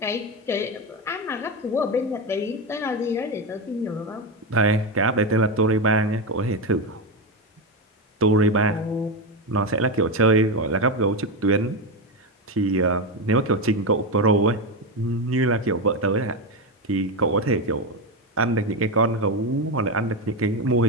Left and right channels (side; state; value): both; normal; correlation 0.12